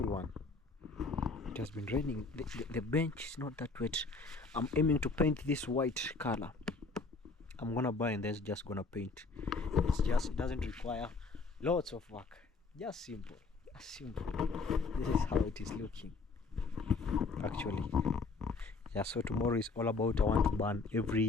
one. It has been raining. The bench is not that wet. I'm aiming to paint this white color. I'm gonna buy and then just gonna paint. It doesn't require lots of work. Just simple. Just simple. This is how it is looking, actually. Yeah, so tomorrow is all about, I want to burn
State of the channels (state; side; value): quieter; right; 4.0 dB